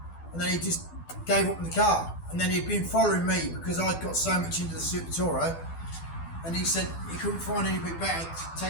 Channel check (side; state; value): right; late; 12 ms